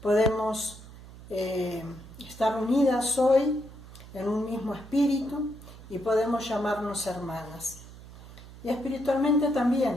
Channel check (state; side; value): noise; right; hum, 17 dB below the sound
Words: podemos estar unidas hoy en un mismo espíritu y podemos llamarnos hermanas. Y espiritualmente